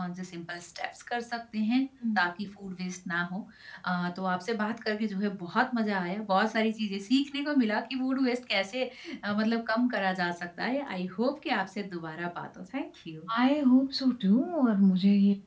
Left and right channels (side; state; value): both; identical; correlation 1.00